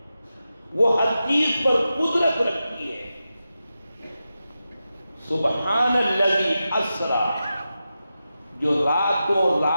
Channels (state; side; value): inverted; both; correlation -0.91